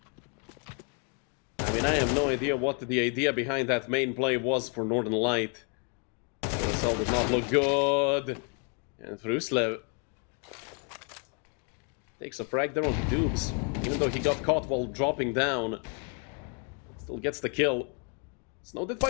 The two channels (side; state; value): right; quieter; 38.5 dB